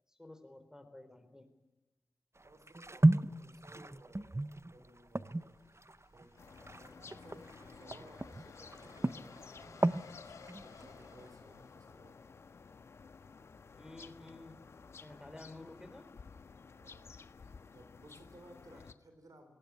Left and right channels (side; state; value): both; normal; correlation 0.96